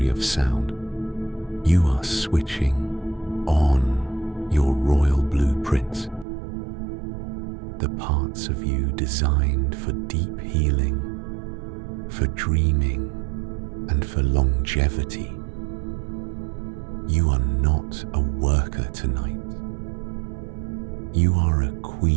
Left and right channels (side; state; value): left; drops out; at 6.2 s